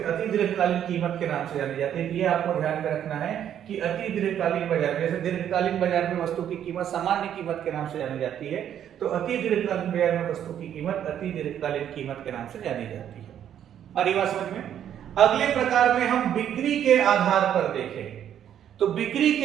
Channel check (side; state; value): left; quieter; 9.9 dB